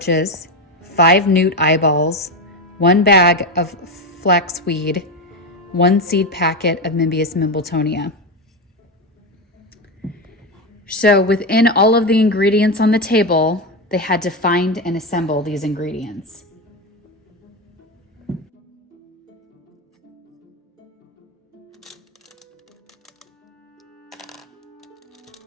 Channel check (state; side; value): normal; both; correlation 0.14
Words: 5 newt eyeballs, 1 bag of flaxweed, 1 seed packet of Mimbius mimbletonia. So within all of the ingredients on the table, they had to find and assemble these ingredients.